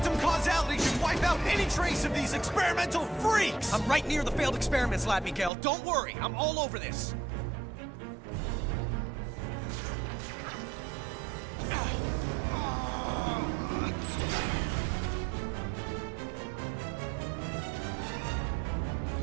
causality should wipe out any trace of these experimental freaks! I'm right near the failed experiments lab, Miguel. Don't worry, I'm all over this.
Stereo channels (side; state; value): left; drops out; at 5.5 s